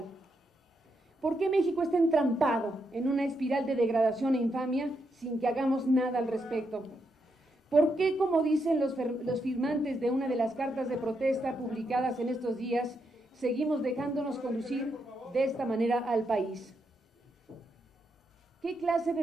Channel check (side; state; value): both; normal; correlation 0.81